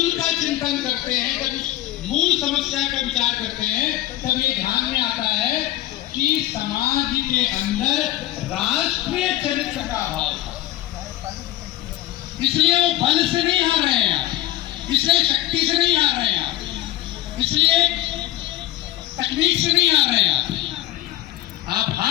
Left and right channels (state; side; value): quieter; right; 15.0 dB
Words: का चिंतन करते हैं, जब उस मूल समस्या का विचार करते हैं, तब ये ध्यान में आता है कि समाज के अंदर राष्ट्रीय चरित्र का अभाव था। इसलिए वो बल से नहीं हार रहे हैं, इसलिए शक्ति से नहीं हार रहे हैं, इसलिए तकनीक से नहीं हार रहे हैं। आप